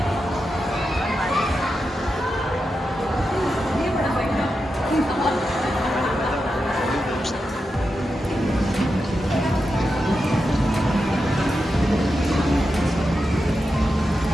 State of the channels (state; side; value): normal; both; correlation 0.88